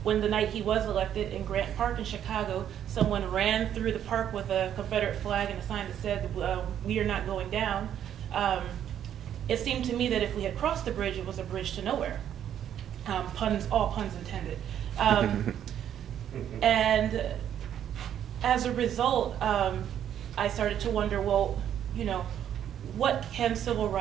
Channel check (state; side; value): quieter; left; 10.0 dB